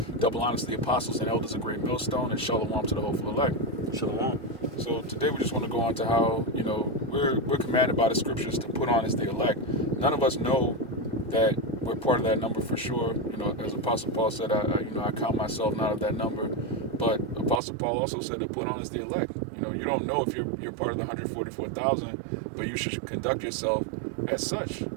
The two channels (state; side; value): drops out; left; at 17.6 s